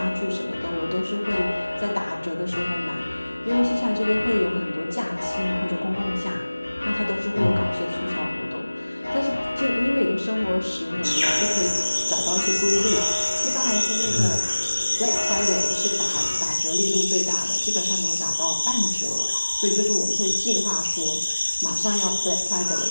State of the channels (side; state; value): both; inverted; correlation -1.00